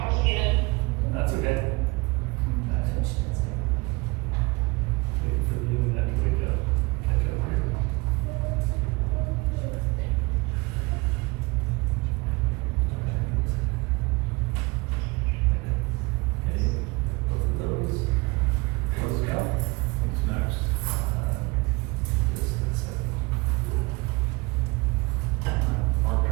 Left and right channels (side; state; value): left; quieter; 25.5 dB